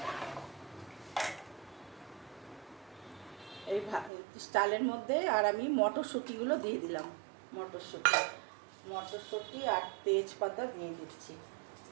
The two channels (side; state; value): left; drops out; at 4.1 s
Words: এই চালের মধ্যে আর আমি মটরশুঁটিগুলো দিয়ে দিলাম। মটরশুঁটি আর তেজপাতা দিয়ে দিচ্ছি।